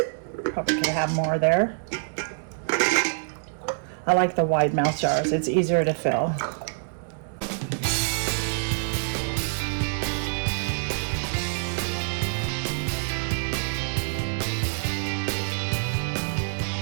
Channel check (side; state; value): left; silent; digital silence